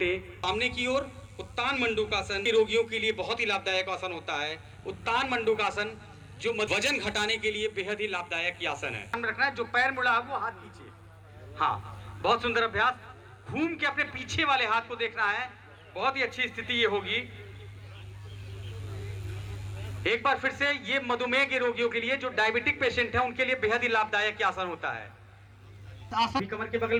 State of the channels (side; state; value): both; identical; correlation 1.00